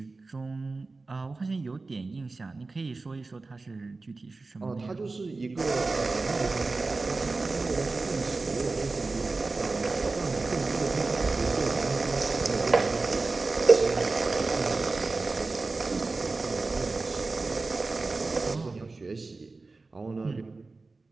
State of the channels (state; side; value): quieter; left; 3.7 dB